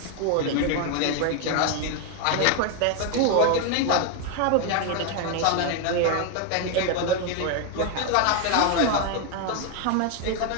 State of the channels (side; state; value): both; different; correlation 0.01